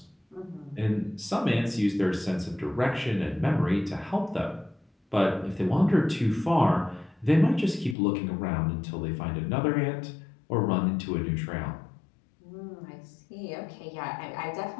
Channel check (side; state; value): right; drops out; at 8.0 s